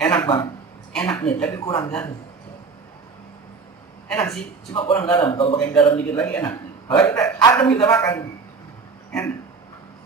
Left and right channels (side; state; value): left; quieter; 4.7 dB